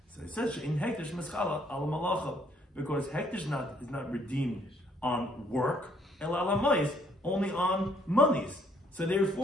So it says in hektish mischala al malacha, because hektish is not redeemed on work, el alamayis, only on monies. So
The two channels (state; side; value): normal; both; correlation 0.66